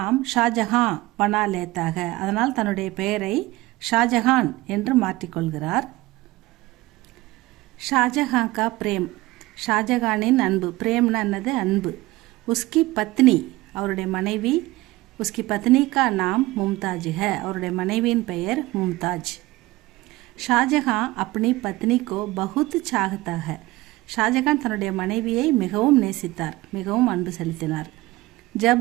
ஷாஜஹான் பனா லேத்தாக. அதனால் தன்னுடைய பெயரை ஷாஜஹான் என்று மாற்றிக்கொள்கிறார். ஷாஜஹான் கா பிரேம் ஷாஜஹானின் அன்பு. பிரேம்னா என்னது? அன்பு. உஸ்கி பத்னி அவருடைய மனைவி. உஸ்கி பத்னி கா நாம் மும்தாஜ் ஹை. அவருடைய மனைவியின் பெயர் மும்தாஜ். ஷாஜஹான் அப்பனி பத்னி கோ பகுத் சாகத்தா ஹை. ஷாஜஹான் தன்னுடைய மனைவியை மிகவும் நேசித்தார், மிகவும் அன்பு செலுத்தினார்.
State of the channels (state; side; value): quieter; left; 19.5 dB